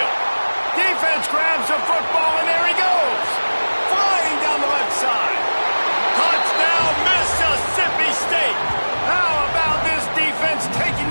Defense grabs the football, and there he goes. Flying down the left side. Touchdown, Mississippi State. How about this defense taking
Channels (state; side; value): inverted; both; correlation -1.00